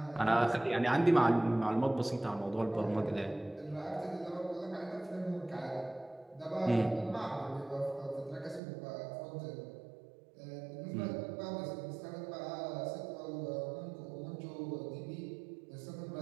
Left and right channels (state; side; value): drops out; left; at 8.6 s